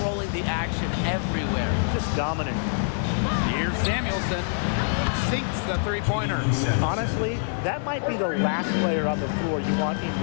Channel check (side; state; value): right; silent; digital silence